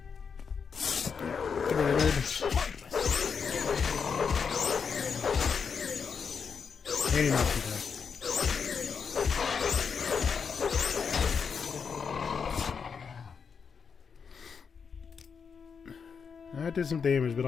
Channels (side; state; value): right; quieter; 6.1 dB